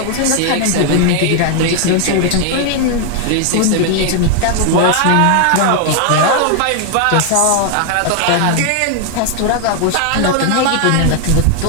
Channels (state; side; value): different; both; correlation 0.00